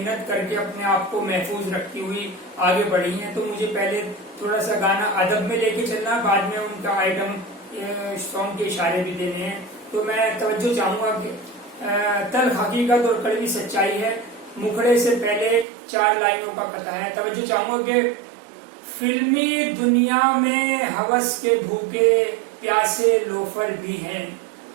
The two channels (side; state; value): left; drops out; at 15.7 s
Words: करके अपने आप को महफूज रखती हुई आगे बढ़ी हैं। तो मुझे पहले थोड़ा सा गाना अदब में लेके चलना, बाद में उनका आइटम सॉन्ग के इशारे भी देने हैं। तो मैं तवज्जो चाहूंगा कि तल्ख हकीकत और कड़वी सच्चाई है, मुखड़े से पहले 4 लाइनों का कथा है। तवज्जो चाहूंगा कि फिल्मी दुनिया में हवस के भूखे प्यासे लोफर भी हैं।